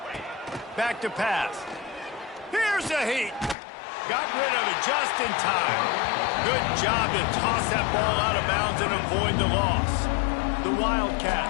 Back to pass. Here's a heat. Got rid of it just in time. Good job to toss that ball out of bounds and avoid the loss. The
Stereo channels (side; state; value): right; drops out; at 3.6 s